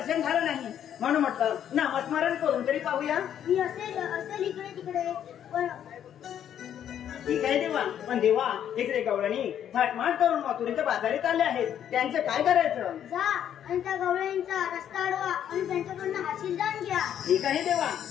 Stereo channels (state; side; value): quieter; right; 9.9 dB